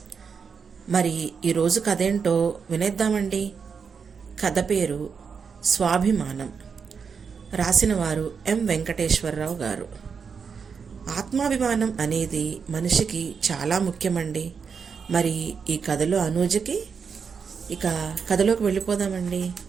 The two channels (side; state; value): left; quieter; 6.0 dB